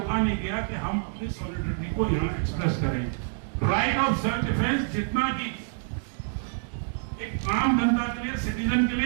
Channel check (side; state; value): left; silent; digital silence